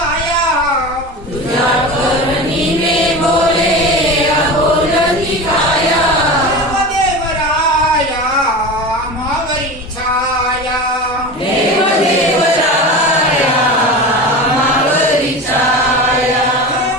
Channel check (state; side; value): normal; both; correlation 0.29